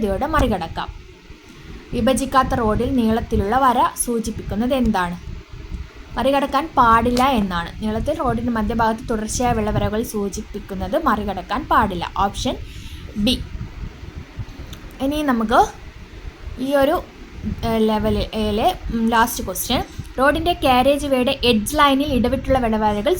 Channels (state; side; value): identical; both; correlation 1.00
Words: മറികടക്കാം. വിഭജിക്കാത്ത റോഡിൽ നീളത്തിലുള്ള വര സൂചിപ്പിക്കുന്നത് എന്താണ്? മറികടക്കാൻ പാടില്ല എന്നാണ്. നീളത്തിൽ റോഡിൻ്റെ മധ്യഭാഗത്ത് തുടർച്ചയായ വെള്ളവരകൾ സൂചിപ്പിക്കുന്നത് മറികടക്കാൻ പാടില്ല. Option B. ഇനി നമുക്ക് ഈ ഒരു ലെവലിലെ ലാസ്റ്റ് ക്വസ്റ്റ്യൻ. റോഡിൻ്റെ കാരേജ് വേയുടെ എഡ്ജ് ലൈനിൽ ഇടവിട്ടുള്ള വെള്ളവരകൾ